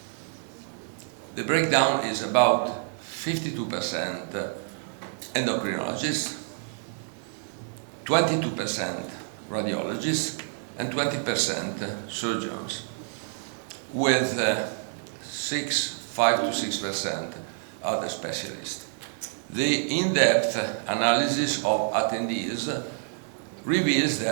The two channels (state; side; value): silent; left; digital silence